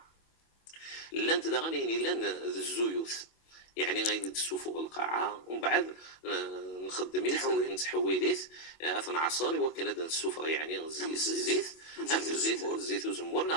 لان تدغني لان الزيوث يعني غير السفر القاعة ومن بعد نخدميت نتحويليت اثنا عصاري وكان هذا السفر يعني الزيت وزمور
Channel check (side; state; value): right; late; 25 ms